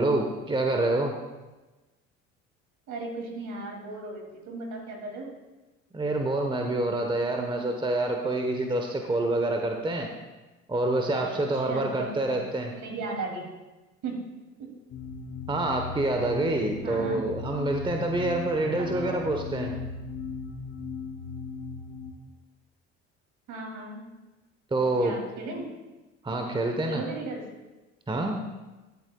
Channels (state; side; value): normal; both; correlation 0.56